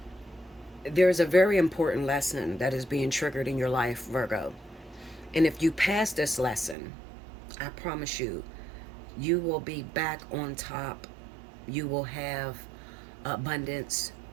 there's a very important lesson that is being triggered in your life, Virgo. And if you pass this lesson, I promise you, you will be back on top. You will have abundance.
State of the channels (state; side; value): drops out; left; at 6.8 s